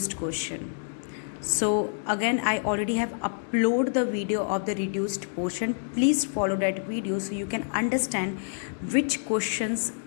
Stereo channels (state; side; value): silent; right; digital silence